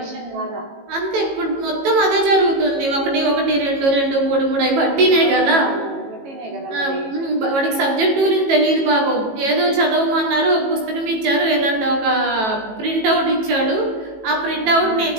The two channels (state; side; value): late; left; 18 ms